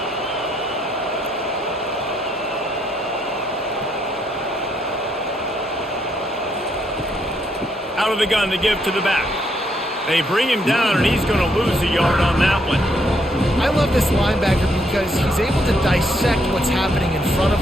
Out of the gun to give to the back. They bring him down, and he's going to lose a yard on that one. I love this linebacker because he's able to dissect what's happening in front of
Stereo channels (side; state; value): both; normal; correlation 0.73